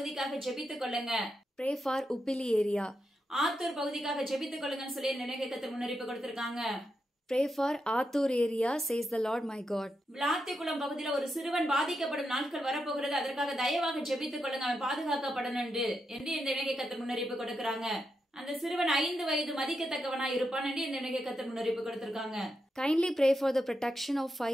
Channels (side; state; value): both; normal; correlation 0.85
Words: ஜெபித்துக் கொள்ளுங்க. Pray for Uppili area. Attur பகுதிக்காக ஜெபித்துக் கொள்ளுங்கன்னு சொல்லி தேவனாகிய கர்த்தர் முன்னறிவிப்பு கொடுத்திருக்காங்க. Pray for Athur area, says the Lord my God. Vilathikulam பகுதியில ஒரு சிறுவன் பாதிக்கப்படும் நாட்கள் வரப்போகிறது. அதற்காக தயவாக ஜெபித்துக் கொள்ளுங்க, அவன் பாதுகாக்கப்படணும் என்று தேவனாகிய கர்த்தர் முன்னறிவிப்பு கொடுக்கிறாங்க. அந்த சிறுவன் 5 வயது மதிக்கத்தக்கவனா இருப்பான் என்று தேவனாகிய கர்த்தர் முன்னறிவிப்பு கொடுத்திருக்காங்க. Kindly pray for the protection of